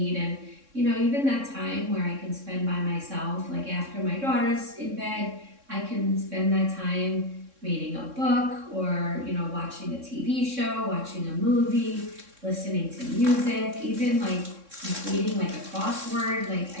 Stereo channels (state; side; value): late; left; 3.6 ms